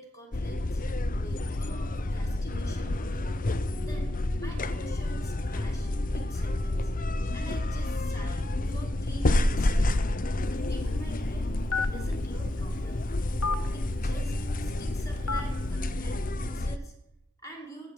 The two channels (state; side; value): normal; both; correlation 0.87